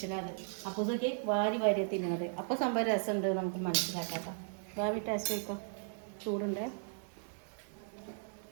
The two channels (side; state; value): left; silent; digital silence